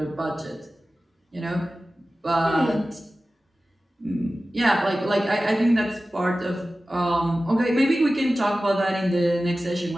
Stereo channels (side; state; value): both; normal; correlation 0.95